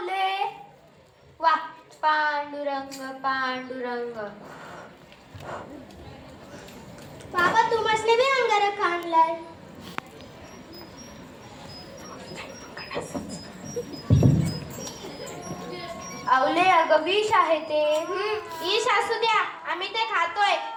वा, पांडुरंग पांडुरंग. बाबा, तू मसले बी अंगारक आणलाय. आवले अगं विष आहे ते. ईश असू द्या, आम्ही ते खातोय.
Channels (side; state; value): both; identical; correlation 1.00